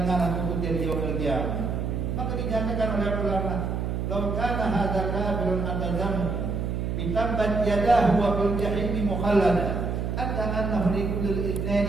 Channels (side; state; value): right; noise; hum, 1 dB below the sound